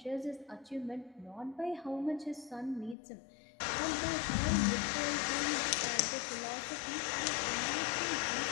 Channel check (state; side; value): drops out; right; at 3.0 s